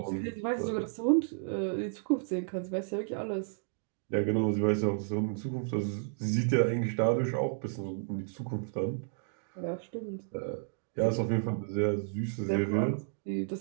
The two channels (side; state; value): left; silent; digital silence